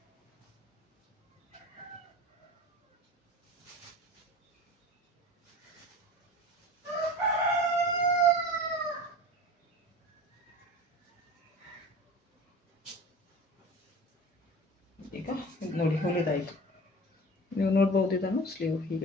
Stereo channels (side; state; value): both; normal; correlation 0.36